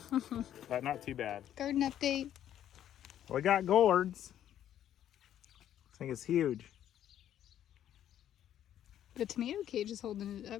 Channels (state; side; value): quieter; right; 10.9 dB